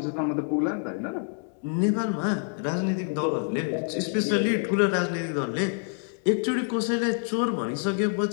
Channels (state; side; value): silent; right; 56 dB below the other